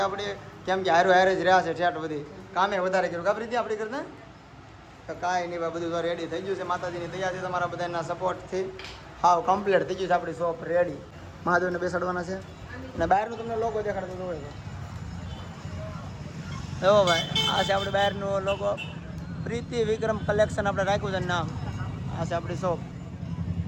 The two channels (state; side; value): identical; both; correlation 1.00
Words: આપણે, કેમ કે હારે હારે જ રહ્યા છે ઠેઠ બધી કામે વધારે કર્યું કાપરી હતી આપણી કરતા. તો કાંઈ નહીં ભાઈ, બધું તો રેડી થઈ ગયું છે માતાજીની દયાથી, તમારા બધાના સપોર્ટથી હાવ કમ્પ્લીટ થઈ ગયું છે. આપણી શોપ રેડી, મહાદેવને બેસાડવાના છે. અને બહારનું તમને લોગો દેખાડતો તો હોય તો એવો ભાઈ, આ છે આપણે બહારનું લોગો, પ્રીતિ વિક્રમ કલેક્શન આપણે રાખ્યું છે નામ. આ છે આપણી શોપ